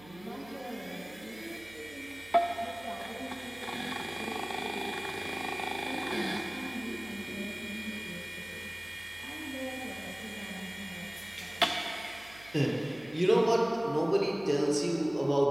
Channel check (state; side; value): noise; right; hum, 21 dB below the sound